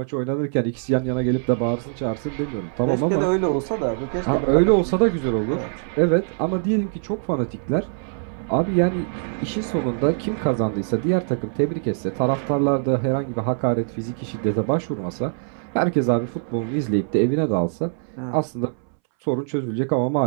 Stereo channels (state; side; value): silent; left; 63 dB below the other